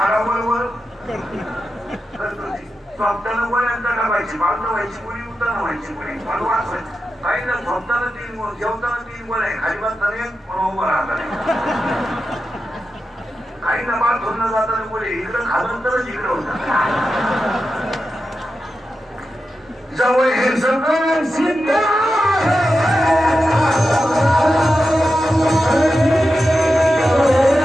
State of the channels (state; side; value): normal; both; correlation 0.90